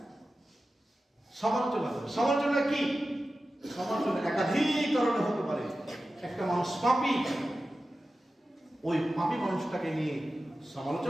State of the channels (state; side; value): normal; both; correlation 0.94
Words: সমালোচনা কি? সমালোচনা একাধিক কারণে হতে পারে। একটা মানুষ পাপী, ওই পাপী মানুষটাকে নিয়ে